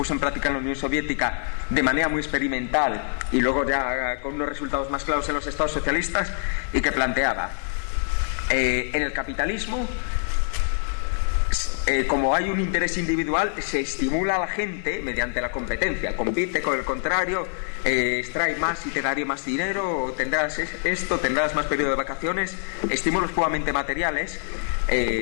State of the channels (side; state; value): right; silent; digital silence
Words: en práctica en la Unión Soviética de manera muy experimental y luego ya con unos resultados más claros en los estados socialistas, y que planteaba, en el capitalismo, como hay un interés individual, se estimula a la gente mediante la competencia. Compite con el contrario, extrae más y te daré más dinero, o tendrás esto, tendrás más periodo de vacaciones, estímulos puramente materiales,